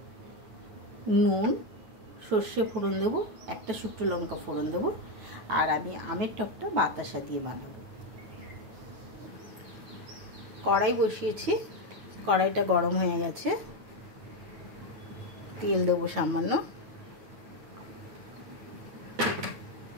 নুন, সর্ষে ফোড়ন দেবো, একটা শুকনো লঙ্কা ফোড়ন দেবো। আর আমি আমের টকটা বাতাসা দিয়ে বানাবো। কড়াই বসিয়েছি, কড়াইটা গরম হয়ে গেছে। তেল দেবো সামান্য।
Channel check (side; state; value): left; late; 9.3 ms